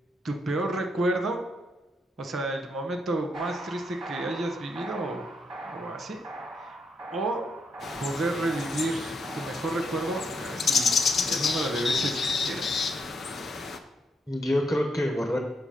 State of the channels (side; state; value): both; normal; correlation 0.78